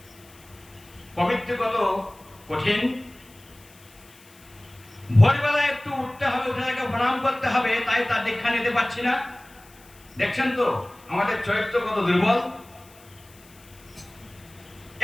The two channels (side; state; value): left; noise; hiss, 25 dB below the sound